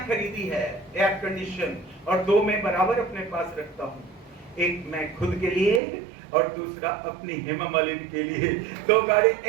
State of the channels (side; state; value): left; drops out; at 5.8 s